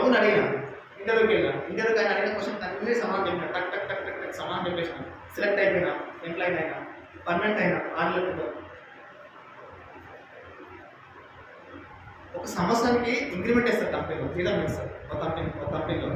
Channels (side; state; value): both; identical; correlation 1.00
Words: అడిగిన, ఇంటర్వ్యూకి వెళ్ళిన. ఇంటర్వ్యూకి ఆయన అడిగిన క్వశ్చన్ అన్నీ సమానం చెప్పిన, టక్ టక్ టక్ టక్ టక్ సమానం చెప్పేసిన. సెలెక్ట్ అయిపోయినా, ఎంప్లాయీ అయినా, పర్మనెంట్ అయినా 6 నెలలు. ఒక సంవత్సరానికి ఇంక్రిమెంట్ ఇస్తారు కంపెనీలో, జీతం ఇస్తారు. ఒక